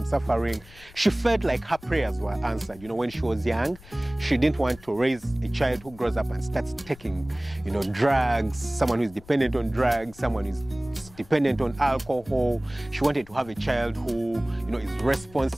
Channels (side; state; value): left; noise; rumble, 22 dB below the sound